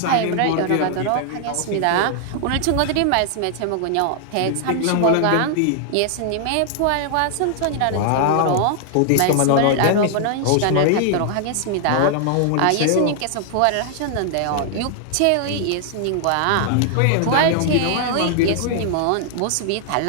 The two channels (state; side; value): different; both; correlation 0.00